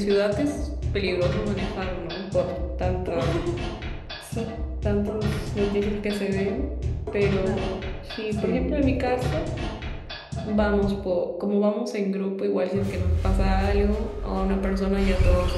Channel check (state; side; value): identical; both; correlation 1.00